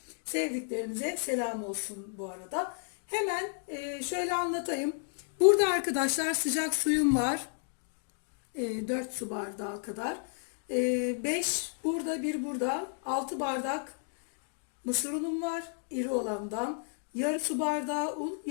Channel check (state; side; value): silent; right; digital silence